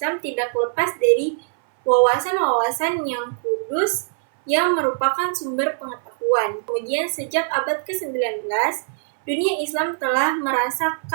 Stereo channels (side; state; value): left; silent; 61 dB below the other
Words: tidak lepas dari wawasan-wawasan yang kudus yang merupakan sumber pengetahuan. Kemudian sejak abad ke-19, dunia Islam telah